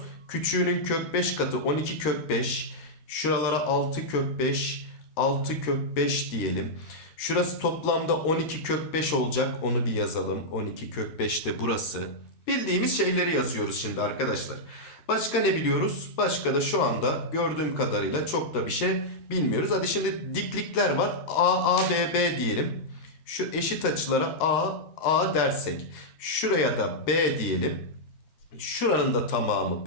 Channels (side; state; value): right; late; 13 ms